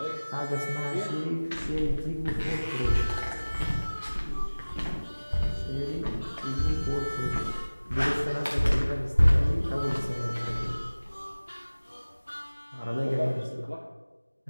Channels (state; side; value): inverted; both; correlation -1.00